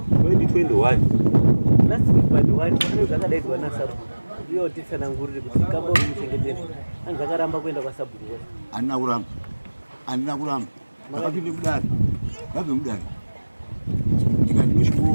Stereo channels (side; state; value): both; inverted; correlation -1.00